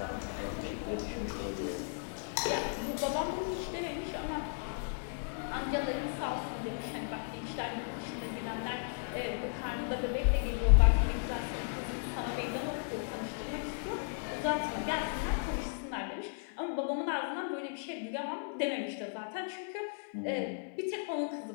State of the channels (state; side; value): silent; right; 54 dB below the other